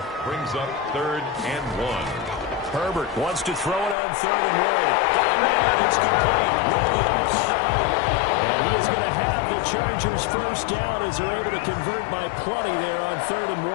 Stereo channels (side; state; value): right; drops out; at 4.0 s